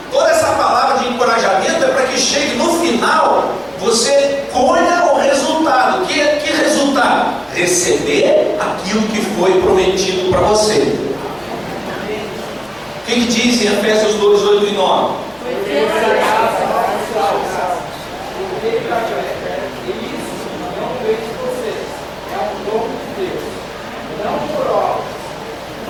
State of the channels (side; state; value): both; identical; correlation 1.00